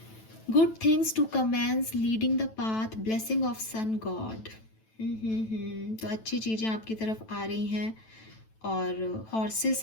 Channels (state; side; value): late; right; 9.1 ms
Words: Good things to commence, leading the path, blessing of sun god. तो अच्छी चीज़ें आपकी तरफ आ रही हैं, और